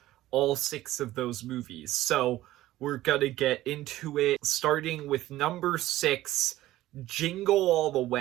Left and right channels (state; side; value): quieter; left; 15.4 dB